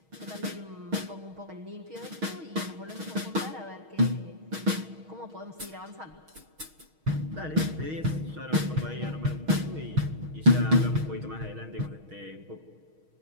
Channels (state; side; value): late; left; 6.3 ms